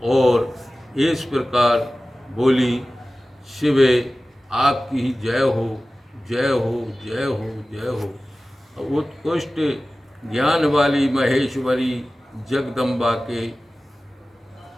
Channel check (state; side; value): normal; both; correlation 0.96